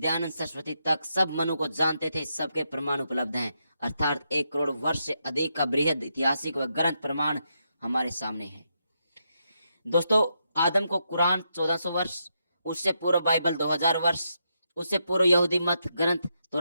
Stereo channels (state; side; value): inverted; both; correlation -0.82